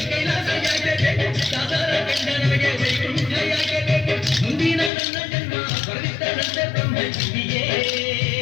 ಕೈಲಾಸ ಯಾಕೆ ಬೇಕು, ಸಾಧಾರ ಕಂಡ ನಮಗೆ ವೈಕುಂಠ ಯಾಕೆ ಬೇಕು. ಮುಂದಿನ ನನ್ನ ಜನ್ಮ ಬರೆದಿದ್ದರಂತೆ ಬ್ರಹ್ಮ ಇಲ್ಲಿಯೇ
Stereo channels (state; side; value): drops out; right; at 4.9 s